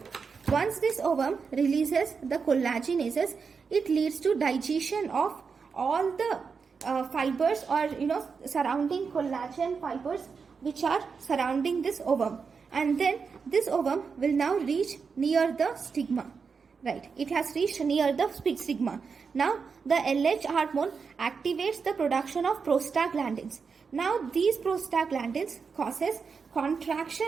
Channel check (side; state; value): left; quieter; 5.5 dB